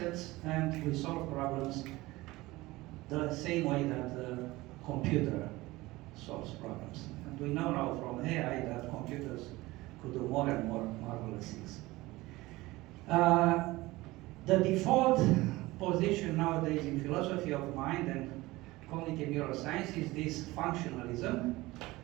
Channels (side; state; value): left; quieter; 19.8 dB